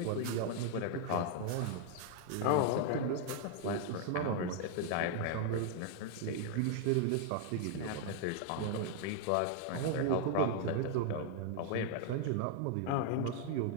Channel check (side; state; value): both; different; correlation 0.00